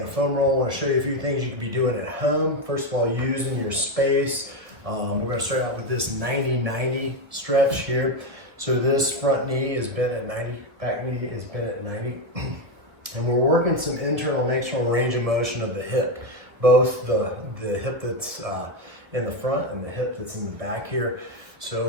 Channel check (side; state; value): left; late; 1.5 ms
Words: a foam roll. I want to show you a few things you can be doing at home. First of all, using your space. We're going to start out with this 90-90 stretch here. So this front knee is bent at 90, back knee is bent at 90. And we're working some internal and external range of motion of the hip. Both the hip that's in the front and the hip that's in the back here. So